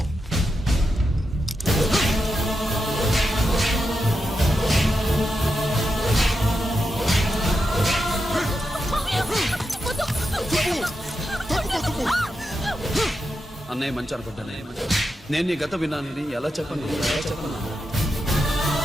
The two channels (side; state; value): both; normal; correlation 0.87